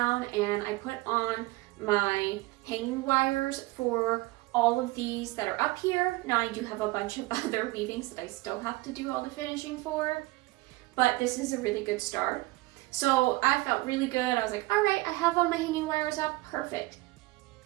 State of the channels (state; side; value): quieter; left; 20.8 dB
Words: and I put on my hanging wires for all of these that are up here. Now I do have a bunch of other weavings that I still have to do all the finishing for, but this is a really good start. So I felt really good. I was like, all right, I have all my hanging wires up, perfect.